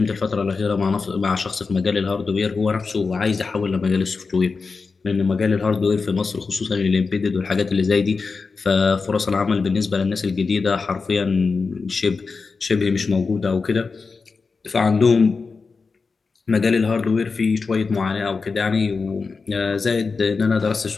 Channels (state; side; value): quieter; right; 4.6 dB